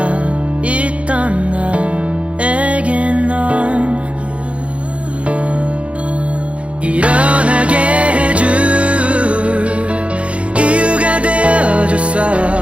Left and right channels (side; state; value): left; late; 0.062 ms